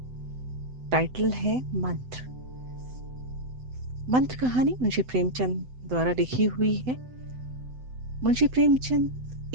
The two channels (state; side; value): late; left; 7.9 ms